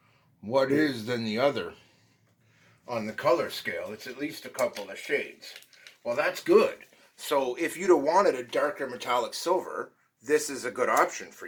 what is than the other. On the color scale, it's at least a couple of shades. Well, that's good. So if you'd have wanted a darker metallic silver, this is a good option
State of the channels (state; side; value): identical; both; correlation 1.00